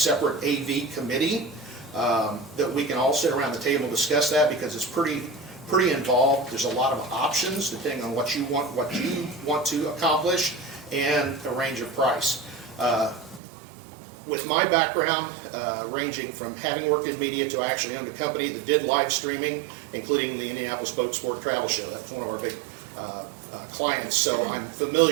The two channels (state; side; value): drops out; left; at 13.4 s